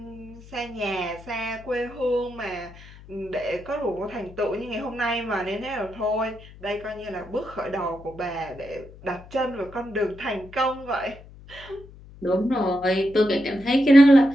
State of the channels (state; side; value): noise; left; hum, 19 dB below the sound